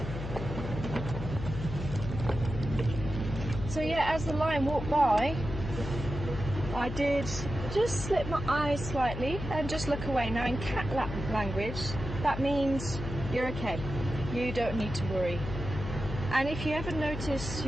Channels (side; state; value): left; noise; hum, 7 dB below the sound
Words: So yeah, as the lion walked by, I did just slip my eyes slightly and just look away. Now in cat language, that means you're okay. you don't need to worry. And if you ever notice